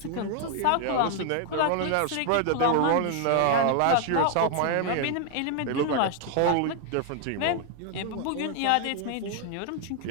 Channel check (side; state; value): both; different; correlation 0.00